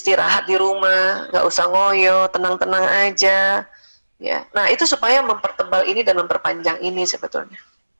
di rumah, nggak usah ngoyo, tenang-tenang aja. Ya, nah itu supaya mempertebal ini dan memperpanjang ini sebetulnya.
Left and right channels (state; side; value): inverted; both; correlation -1.00